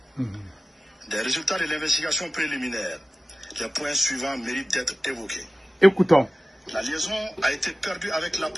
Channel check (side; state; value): both; normal; correlation 0.95